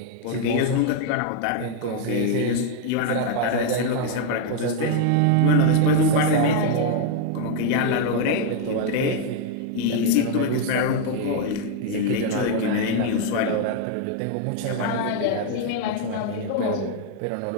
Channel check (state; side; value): different; both; correlation 0.00